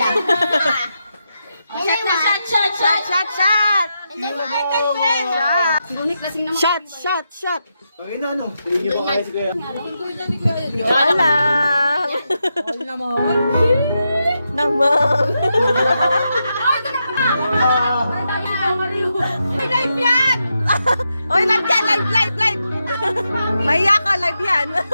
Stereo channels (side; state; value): both; inverted; correlation -0.85